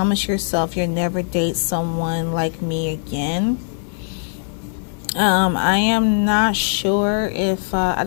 yourself you'll never date someone like me again. I am not sure if I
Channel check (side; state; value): right; silent; digital silence